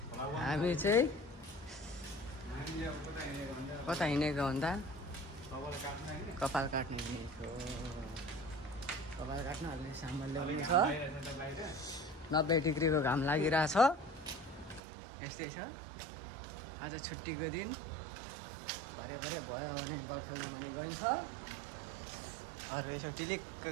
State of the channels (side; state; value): left; drops out; at 14.8 s